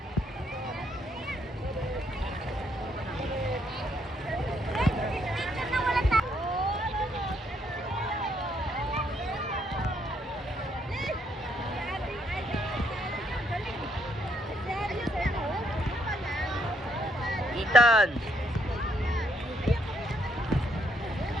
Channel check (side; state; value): both; normal; correlation 0.72